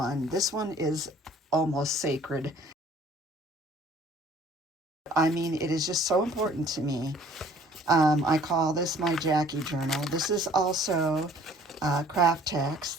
This one is almost sacred. I mean, it is just so important to me. I call this my Jackie journal. This is also craft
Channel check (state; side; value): normal; both; correlation 0.55